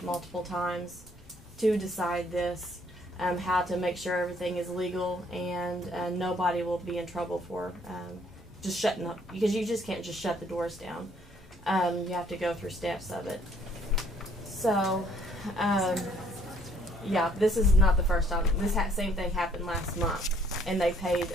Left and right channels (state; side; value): normal; both; correlation 0.63